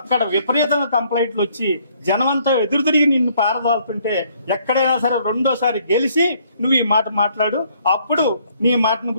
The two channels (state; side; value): inverted; both; correlation -0.65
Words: అక్కడ విపరీతంగా కంప్లైంట్లు వచ్చి జనమంతా ఎదురు తిరిగి నిన్ను పారదాలుతుంటే ఎక్కడైనా సరే రెండోసారి గెలిచి నువ్వు ఈ మాట మాట్లాడు, అప్పుడు నీ మాటను